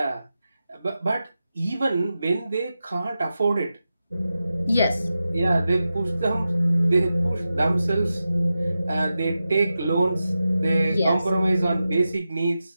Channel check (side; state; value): both; inverted; correlation -0.92